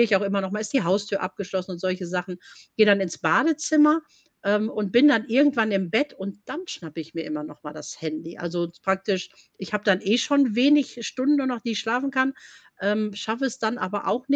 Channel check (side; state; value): both; identical; correlation 1.00